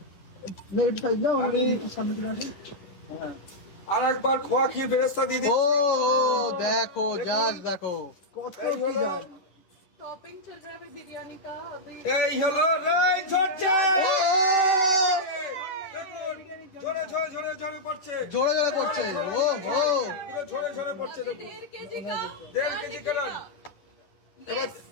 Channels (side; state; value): right; late; 11 ms